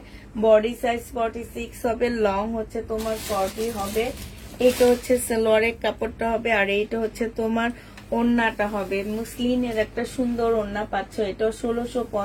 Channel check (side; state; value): both; identical; correlation 1.00